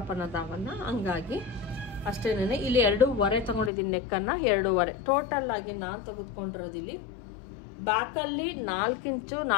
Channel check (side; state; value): right; drops out; at 3.7 s